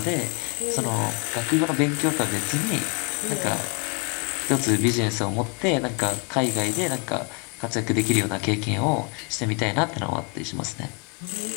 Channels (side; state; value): right; quieter; 34.2 dB